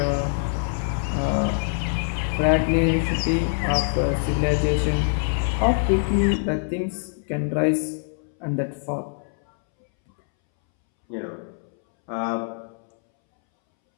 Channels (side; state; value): right; silent; 63 dB below the other